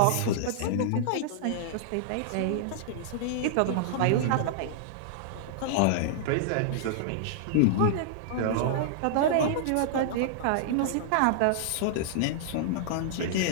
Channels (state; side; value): different; both; correlation -0.01